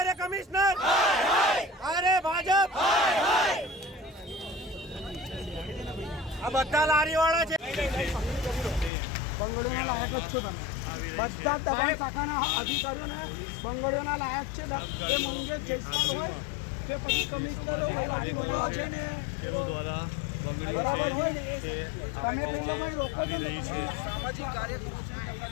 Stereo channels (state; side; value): drops out; right; at 8.9 s